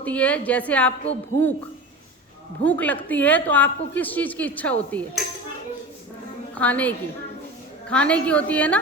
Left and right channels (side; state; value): both; normal; correlation 0.31